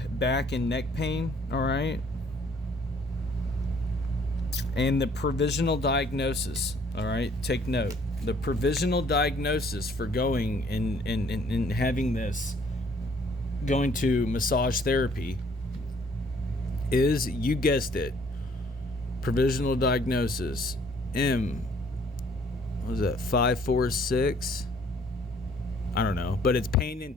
back and neck pain. All right. And the provisional diagnosis. All right. Take note. The provisional diagnosis for going and having this, going to massage therapy, is, you guessed it, provisional diagnosis what was that, 546? I don't know, but it's pain in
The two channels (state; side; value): normal; both; correlation 0.61